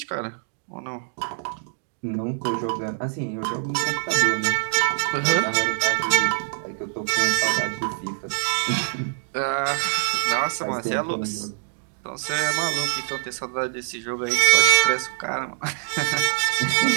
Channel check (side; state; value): left; silent; digital silence